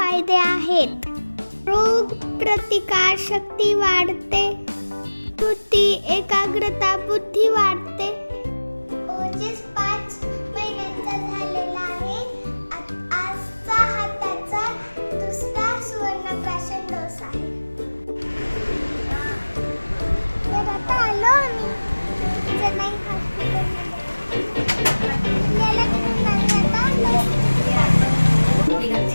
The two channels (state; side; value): inverted; both; correlation -1.00